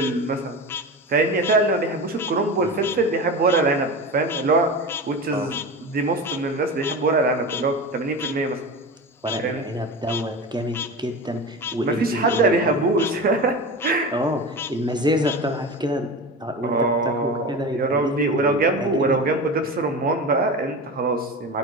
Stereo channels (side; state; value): both; normal; correlation 0.27